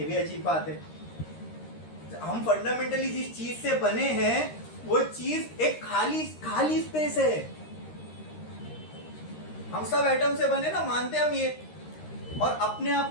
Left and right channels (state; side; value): late; right; 13 ms